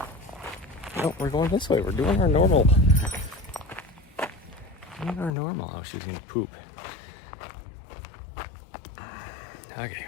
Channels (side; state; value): right; drops out; at 5.3 s